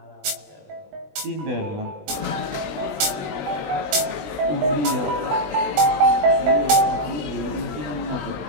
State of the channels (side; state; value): left; late; 20 ms